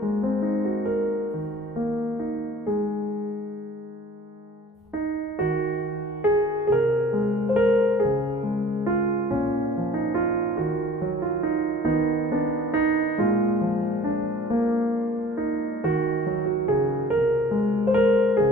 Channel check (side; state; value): both; normal; correlation 0.49